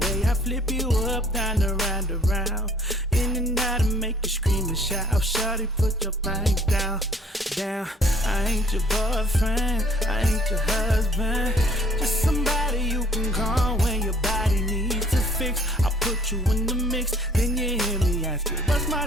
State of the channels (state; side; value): normal; both; correlation 0.58